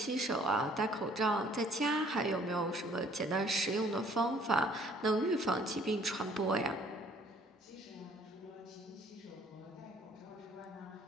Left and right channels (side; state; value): both; normal; correlation 0.59